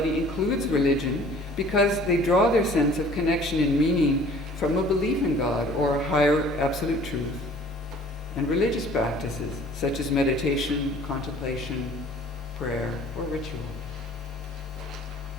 includes religion because they draw their sense of connection and meaning from a belief in God or a higher absolute truth, and religious practices such as meditation, contemplation, prayer, or ritual.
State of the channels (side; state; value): both; normal; correlation 0.51